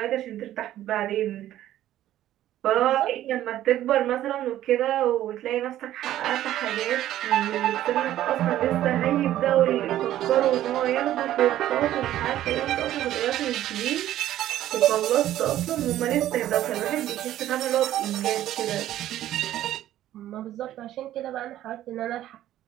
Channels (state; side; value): quieter; left; 13.0 dB